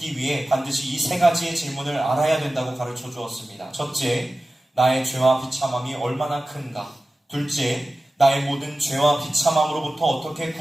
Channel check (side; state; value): both; normal; correlation 0.95